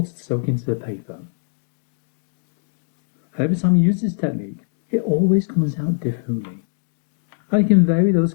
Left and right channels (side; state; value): right; silent; digital silence